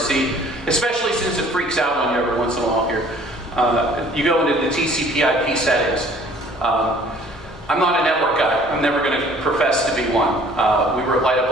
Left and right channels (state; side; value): normal; both; correlation 0.54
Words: especially since it freaks out on you every once in a while here. You go into the TCP/IP settings. I'm not a network guy. I'm never going to profess to be one. We were at Light Up